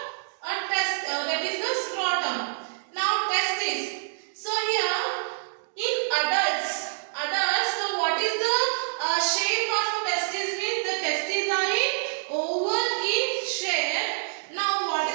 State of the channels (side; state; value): left; silent; digital silence